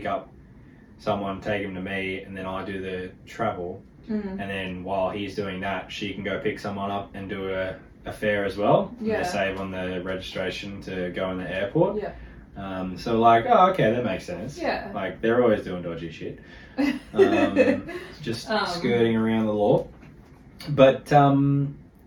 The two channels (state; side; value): identical; both; correlation 1.00